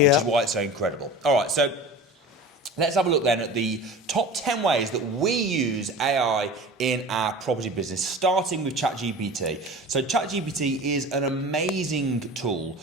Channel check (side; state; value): both; normal; correlation 0.36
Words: is why it's so incredible. All right, so... let's have a look then at the top 10 ways that we use AI in our property business, starting with ChatGPT. So ChatGPT is an amazing tool